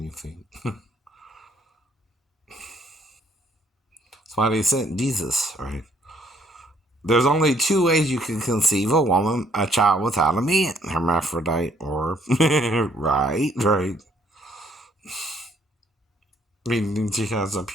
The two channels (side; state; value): both; normal; correlation 0.65